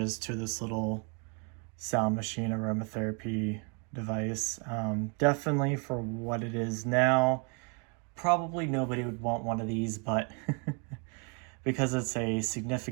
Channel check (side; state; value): left; quieter; 36.6 dB